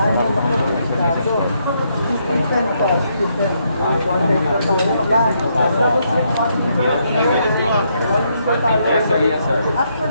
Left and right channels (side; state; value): both; inverted; correlation -0.76